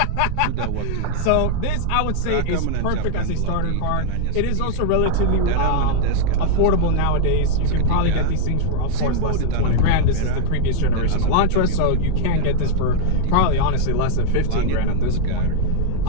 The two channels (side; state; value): both; different; correlation 0.00